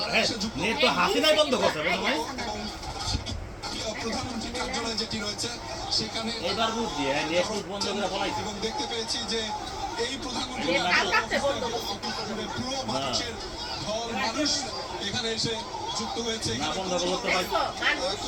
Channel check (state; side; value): identical; both; correlation 1.00